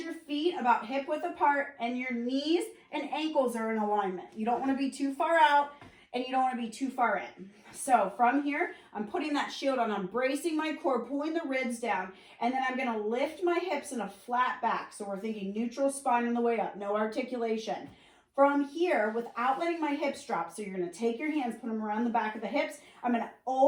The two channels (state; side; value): identical; both; correlation 1.00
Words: feet about hip width apart and your knees and ankles are in alignment. You don't want to be too far out and you don't want to be too far in. So from here, I'm putting that shield on. I'm bracing my core, pulling the ribs down, and then I'm going to lift my hips in a flat back. So we're thinking neutral spine on the way up, no articulation. From here, without letting my hips drop, so you're going to take your hands, put them around the back of the hips. I'm going to